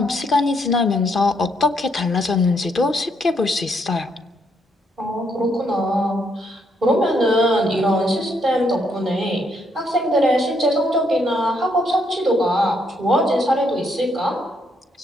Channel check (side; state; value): both; normal; correlation 0.74